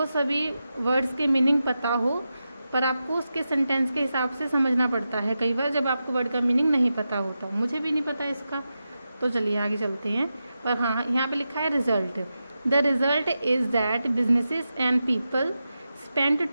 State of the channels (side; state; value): both; inverted; correlation -0.90